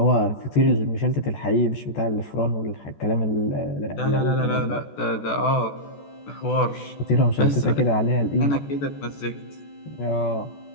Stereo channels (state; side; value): late; right; 14 ms